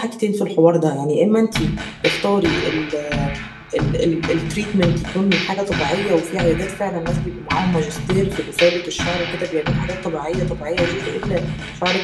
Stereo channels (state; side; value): identical; both; correlation 1.00